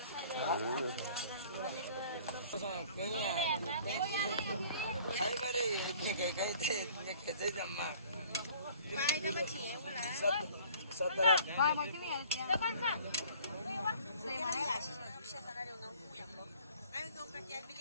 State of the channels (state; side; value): inverted; both; correlation -0.52